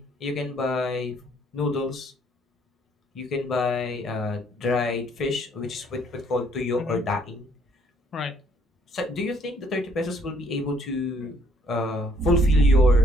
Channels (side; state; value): both; normal; correlation 0.66